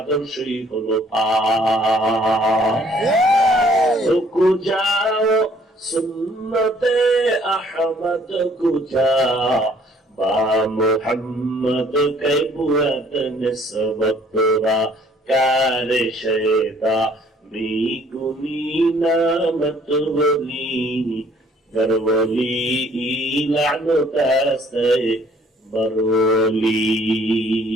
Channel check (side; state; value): both; normal; correlation 0.60